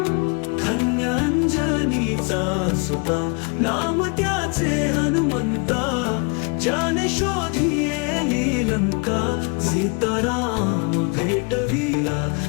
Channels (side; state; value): right; quieter; 33.4 dB